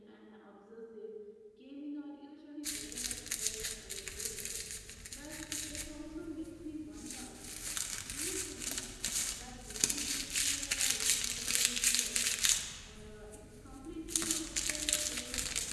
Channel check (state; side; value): identical; both; correlation 1.00